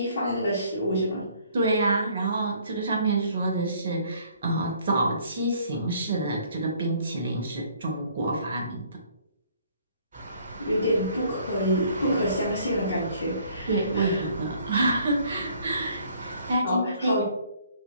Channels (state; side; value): inverted; both; correlation -0.60